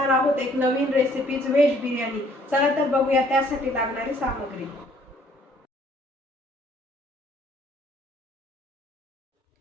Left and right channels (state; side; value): normal; both; correlation 0.61